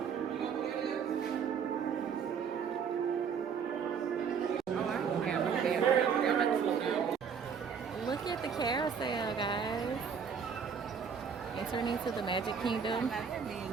Look at the carousel, guys. Entering into the Magic Kingdom.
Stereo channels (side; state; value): left; quieter; 6.7 dB